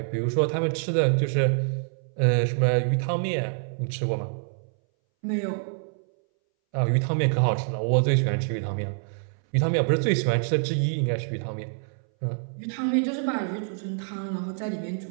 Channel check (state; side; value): silent; left; 61 dB below the other